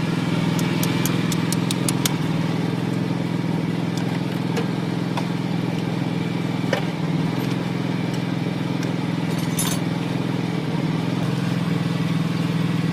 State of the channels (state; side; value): identical; both; correlation 1.00